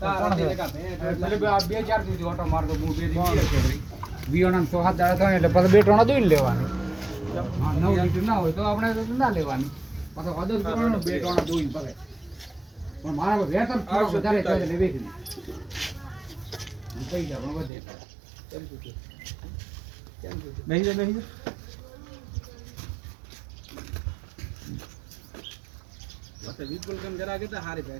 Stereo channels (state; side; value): drops out; left; at 17.7 s